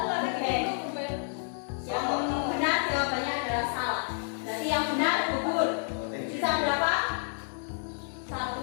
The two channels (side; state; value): right; silent; 58 dB below the other